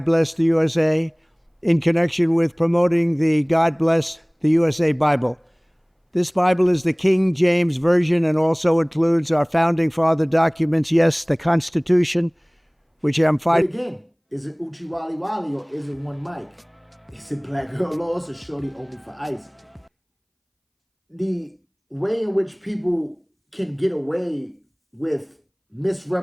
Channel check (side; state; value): both; identical; correlation 1.00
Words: Bless the USA, in connection with promoting the God Bless the USA Bible. This Bible is the King James Version and also includes our founding father documents, yes, the Constitution, which I'm fighting. Again, is it Uchi Wally Wally or is it one mic? Is it Black Girl Lost or Shorty Owe Me for Ice? The way in which people can get away with